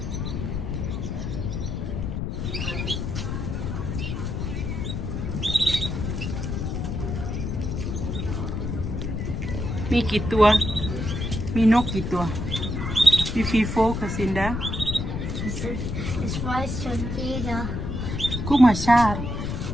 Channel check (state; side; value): noise; left; rumble, 3 dB below the sound